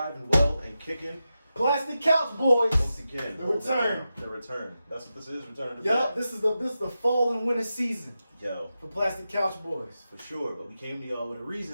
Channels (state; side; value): inverted; both; correlation -0.91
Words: and well and kicking. Plastic Couch Boys. Once again. The return. The return. That's what this is. Return to Yup, bed. this is the fall and winter season Yo, for Plastic Couch Boys. for sure. But we came to y'all with a